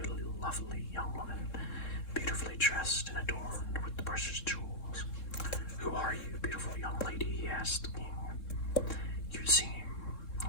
lovely young woman, beautifully dressed and adorned with the precious jewels. "Who are you, beautiful young lady?" he asked the king. "You seem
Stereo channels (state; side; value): late; right; 3.7 ms